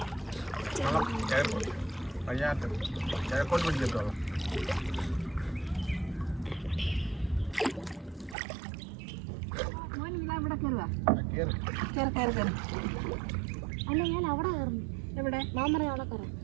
കിഴക്കോട്ട് പിടിക്കട്ടോ. ഇവിടെ കയറുക, കയറി കയറി കയറി. അല്ല ഞാൻ അവിടെ കയറുന്നു. എവിടെ? മാമറ അവിടെ കയറാം.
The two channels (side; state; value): left; drops out; at 8.3 s